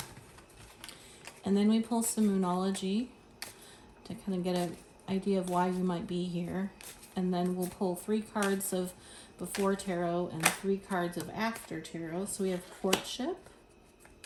And then we pull some Moonology to kind of get an idea of why you might be here. And then we'll pull 3 cards of Before Tarot and 3 cards of After Tarot. So we have Courtship,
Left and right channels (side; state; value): both; identical; correlation 1.00